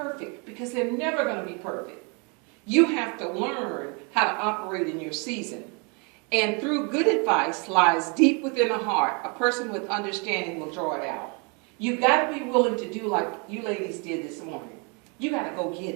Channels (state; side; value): quieter; left; 33.5 dB